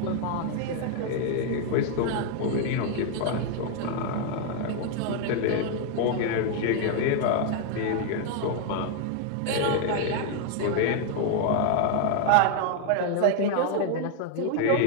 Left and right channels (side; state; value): both; different; correlation 0.00